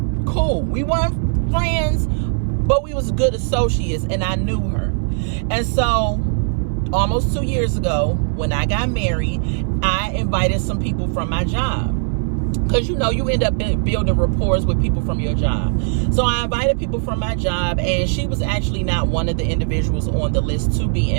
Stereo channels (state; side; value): silent; left; 62 dB below the other